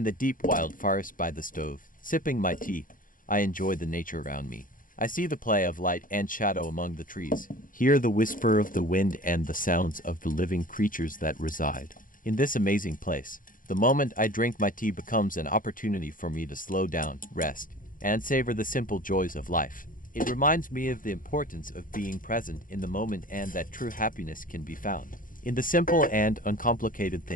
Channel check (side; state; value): right; late; 0.40 ms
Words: the deep wild forest by the stove, sipping my tea, I enjoy the nature around me. I see the play of light and shadow among the trees, hear the whisper of the wind and the sounds of the living creatures that reside in this amazing place. The moment I drink my tea becomes an opportunity for me to slow down, rest, and savor the simple joys of life. It reminds me of the importance of being present in the moment and that true happiness can be found in the simple and uncomplicated